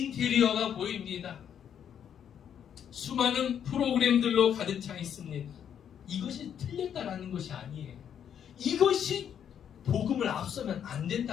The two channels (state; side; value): quieter; right; 8.8 dB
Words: 보입니다. 수많은 프로그램들로 가득 차 있습니다. 이것이 틀렸다라는 것이 아니에요. 이것이 복음을 앞서면 안